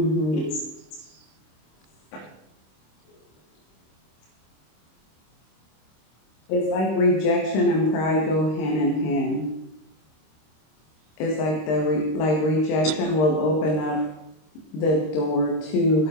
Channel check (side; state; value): right; late; 26 ms